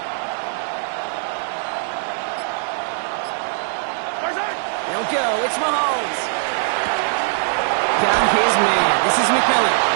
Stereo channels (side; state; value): left; silent; 62 dB below the other